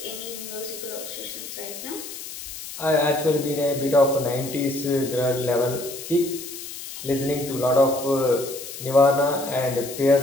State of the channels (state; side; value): noise; left; hiss, 11 dB below the sound